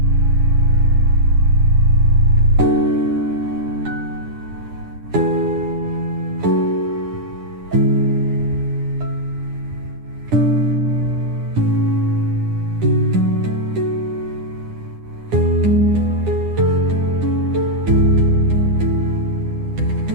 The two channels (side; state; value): left; late; 9.9 ms